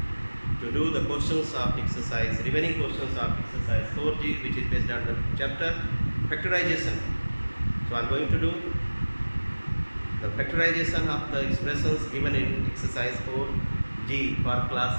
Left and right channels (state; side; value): inverted; both; correlation -1.00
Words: to do the questions of exercise, remaining questions of exercise 4G, which is based on the chapter factorization. So I am going to do the factorization of the expressions given in exercise 4G for